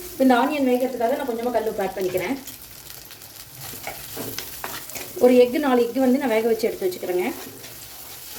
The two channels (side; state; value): both; identical; correlation 1.00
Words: இப்போ இந்த ஆனியன் வேகிறதுக்காக நான் கொஞ்சமாக கல் உப்பு ஆட் பண்ணிக்கிறேன். ஒரு 4 எக்கு வந்து நான் வேக வச்சு எடுத்து வச்சுக்கிறேங்க.